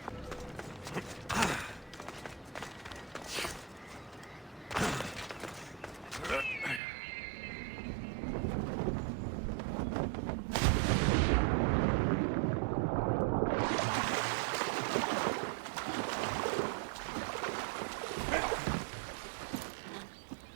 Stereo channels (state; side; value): drops out; left; at 6.8 s